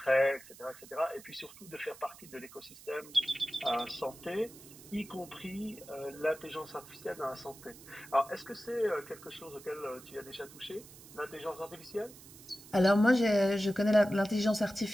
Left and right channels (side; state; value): right; noise; hiss, 19 dB below the sound